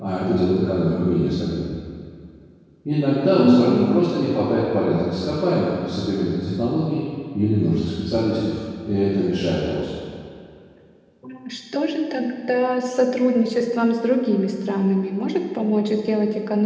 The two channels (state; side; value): identical; both; correlation 1.00